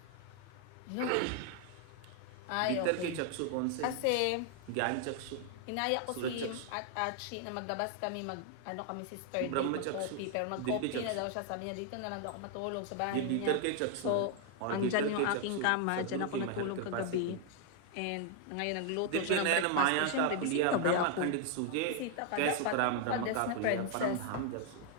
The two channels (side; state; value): both; different; correlation 0.00